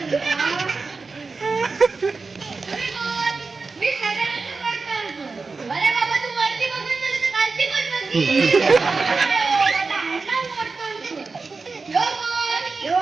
मी सगळ्यांना करतो. अरे बाबा तू वरती बघून झालं तर खालती पण बघ.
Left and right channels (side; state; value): left; quieter; 4.2 dB